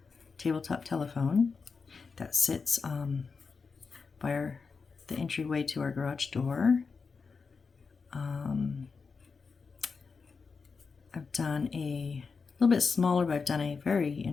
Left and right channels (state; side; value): quieter; right; 5.0 dB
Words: tabletop telephone that sits by the entryway to our garage door. I've done a little bit smaller, but I've done a very